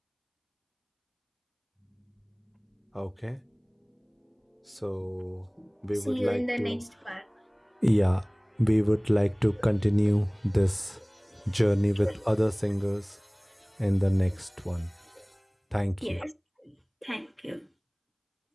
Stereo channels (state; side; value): identical; both; correlation 1.00